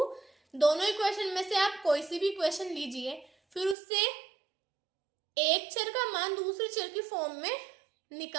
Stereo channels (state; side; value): drops out; left; at 3.8 s